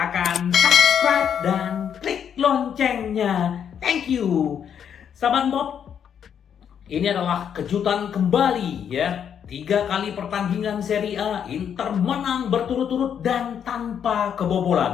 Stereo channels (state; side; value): quieter; right; 8.3 dB